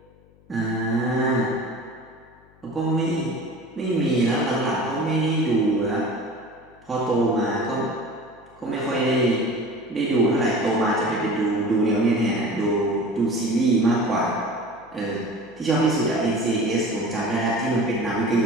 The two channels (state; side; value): noise; left; hum, 28 dB below the sound